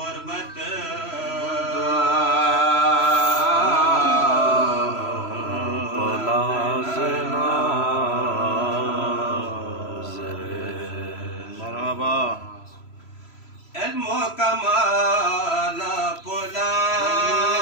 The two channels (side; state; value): right; late; 3.0 ms